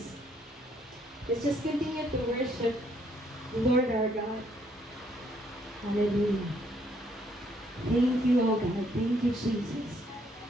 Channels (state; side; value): normal; both; correlation 0.69